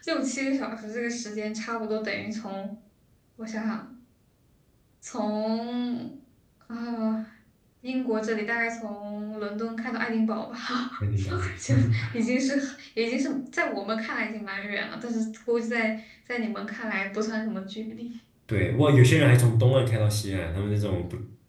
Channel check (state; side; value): identical; both; correlation 1.00